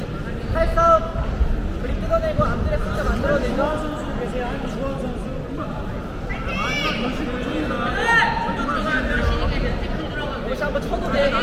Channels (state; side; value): identical; both; correlation 1.00